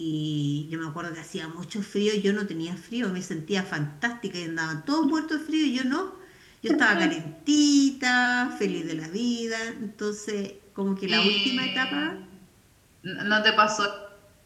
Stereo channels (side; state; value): both; identical; correlation 1.00